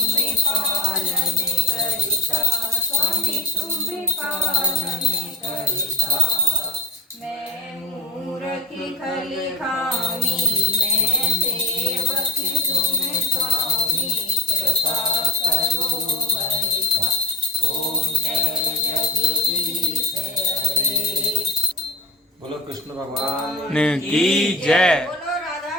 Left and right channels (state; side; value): normal; both; correlation 0.35